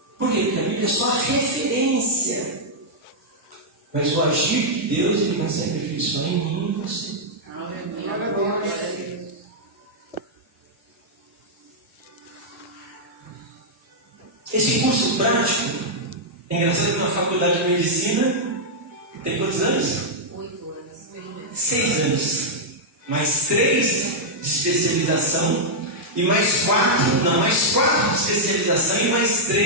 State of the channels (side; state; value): both; normal; correlation -0.06